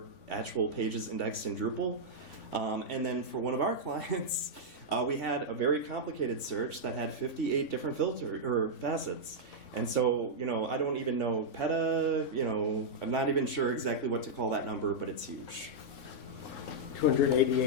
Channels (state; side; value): late; right; 3.5 ms